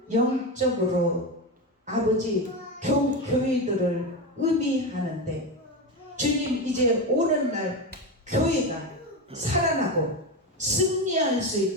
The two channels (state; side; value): normal; both; correlation 0.17